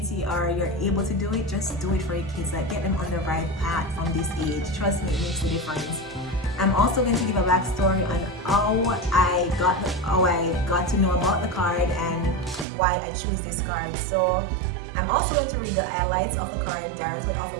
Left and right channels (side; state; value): left; drops out; at 12.7 s